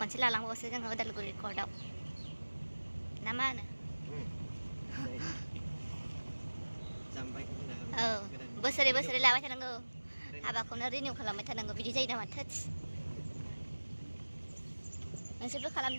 लालांबावसो जोङो उदालगुरि कर्टआव ना मा होनो औ बोसोरै बोसोरै लाबाय थानांगौ हाबाखौनो रिनिउ खालामबाय थानांगौ बिदि जायो नामा थोस नोंसोरबो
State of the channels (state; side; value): inverted; both; correlation -1.00